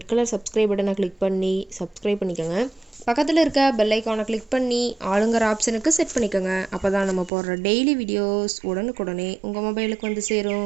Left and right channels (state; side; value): drops out; left; at 7.3 s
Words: கலர் சப்ஸ்கிரைப் பட்டனை கிளிக் பண்ணி சப்ஸ்கிரைப் பண்ணிக்கோங்க. பக்கத்தில் இருக்க பெல் ஐக்கானை கிளிக் பண்ணி ஆளுங்கிற ஆப்ஷனுக்கு செட் பண்ணிக்கோங்க. அப்போ தான் நம்ம போடுற டெய்லி வீடியோஸ் உடனுக்குடனே உங்கள் மொபைலுக்கு வந்து